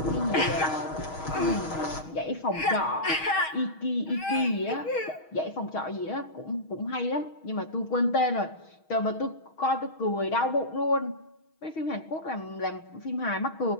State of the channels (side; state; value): right; late; 6.3 ms